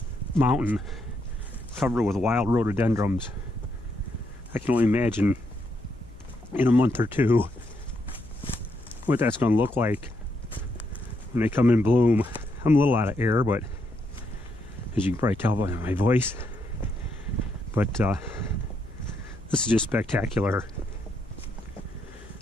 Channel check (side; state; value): left; noise; hum, 20 dB below the sound